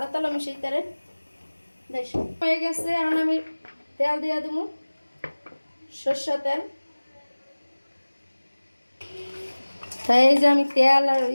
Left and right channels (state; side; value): inverted; both; correlation -1.00